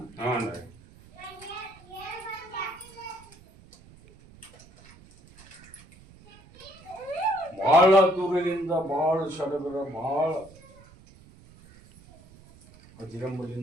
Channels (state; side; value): noise; right; rumble, 23 dB below the sound